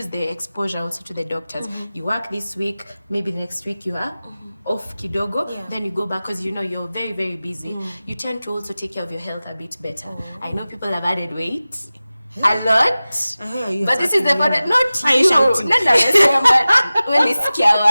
the exposure also to the doctors. You work this week, maybe the next week you are off kidogo, then you go back because you're very, very busy. You tend to also take care of your health a bit better. I know people have added weight. A lot, but this is the part that not you.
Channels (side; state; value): both; inverted; correlation -0.97